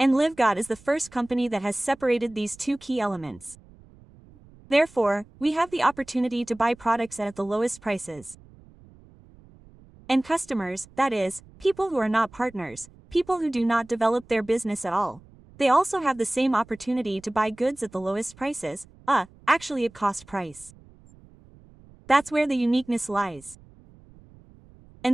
LiveGod is the first company that has separated these two key elements. Therefore, we have the opportunity to buy products at the lowest prices. And customers, that is, people who are not partners, people who do not develop their business at all. They also have the same opportunity to buy goods at the lowest prices, actually at cost price. That's where the uniqueness lies.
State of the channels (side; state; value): right; noise; rumble, 25 dB below the sound